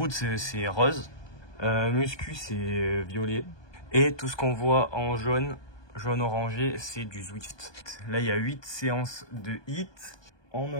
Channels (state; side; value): late; right; 1.2 ms